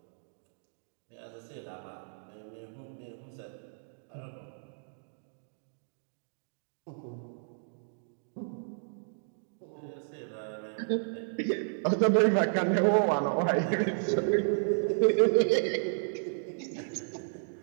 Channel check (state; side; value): silent; left; digital silence